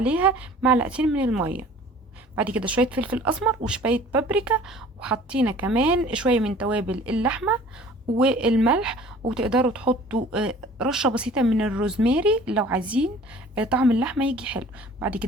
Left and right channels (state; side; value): normal; both; correlation 0.48